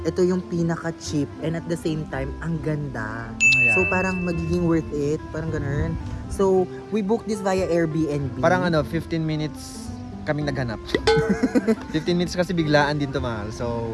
ito yung pinaka-cheap and at the same time, ang ganda. Yeah. So parang magiging worth it, parang ganun. So we booked this via Airbnb. Parang 15 minutes kaming naghanap. 15 minutes kasi biglaan din to, mahal.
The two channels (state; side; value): identical; both; correlation 1.00